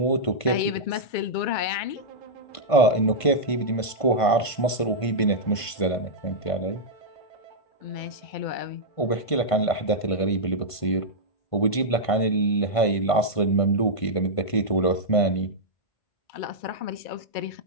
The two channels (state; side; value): late; right; 1.5 ms